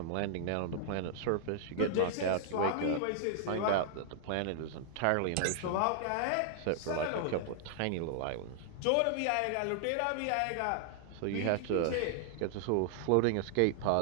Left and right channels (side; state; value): both; different; correlation -0.01